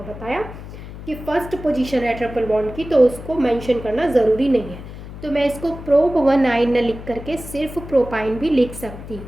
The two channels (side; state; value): left; noise; hum, 12 dB below the sound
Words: बताया कि फर्स्ट पोजीशन है ट्रिपल बॉन्ड की, तो उसको मेंशन करना ज़रूरी नहीं है। तो मैं इसको प्रोप 1 आइन न लिख करके सिर्फ प्रोपाइन भी लिख सकती